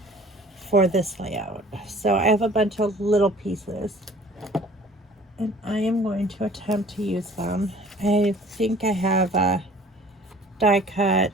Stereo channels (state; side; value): normal; both; correlation 0.50